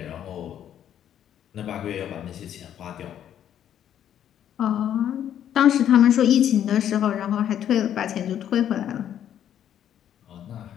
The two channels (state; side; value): quieter; right; 10.2 dB